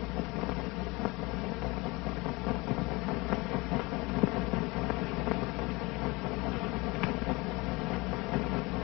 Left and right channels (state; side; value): quieter; right; 24.3 dB